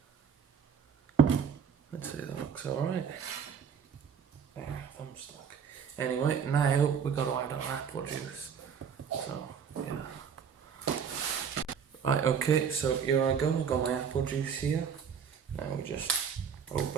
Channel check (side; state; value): left; quieter; 7.1 dB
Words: Let's see, that looks alright. There, thumb stuck. Anyway, now we've got to add our apple juice. So, yeah. Right, okay, so here I go, I've got my apple juice here. Now we just